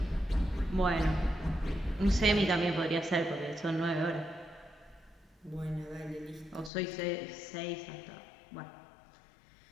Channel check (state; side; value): drops out; right; at 6.7 s